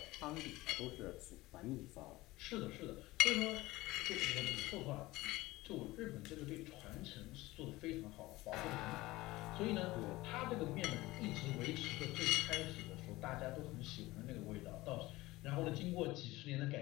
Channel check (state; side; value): quieter; right; 19.3 dB